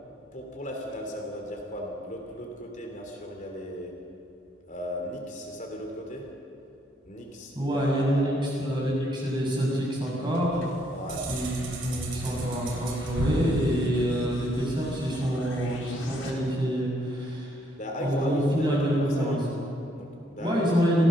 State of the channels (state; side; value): normal; both; correlation 0.71